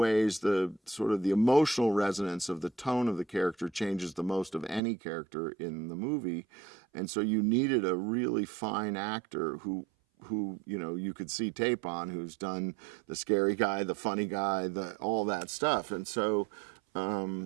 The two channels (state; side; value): drops out; left; at 4.8 s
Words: the sort of the emotional resonance of the tone of the character changes the most of any character in the movie. And so you needed a really fine actor who you could see tape on, who's done the scary guy, the funny guy, all that stuff. And so